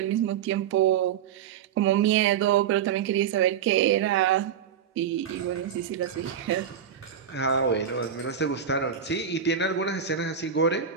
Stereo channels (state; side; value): quieter; left; 8.2 dB